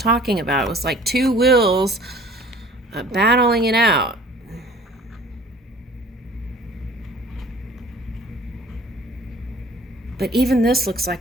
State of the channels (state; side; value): normal; both; correlation 0.50